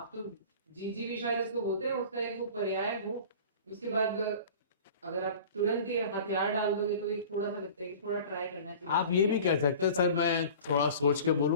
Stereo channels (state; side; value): inverted; both; correlation -0.42